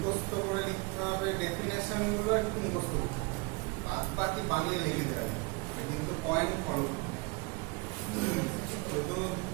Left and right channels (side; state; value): left; quieter; 27.1 dB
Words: করে লিখতে হবে ডেফিনেশন গুলো একটু মুখস্থ করতে হবে, বাদ বাকি বানিয়ে লিখে দেওয়া কিন্তু পয়েন্ট ফলো শুধু